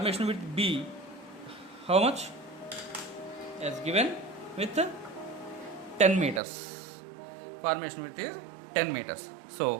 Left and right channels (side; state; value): left; drops out; at 6.4 s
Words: width B, how much? As given with 10 meters. Formation width is 10 meters.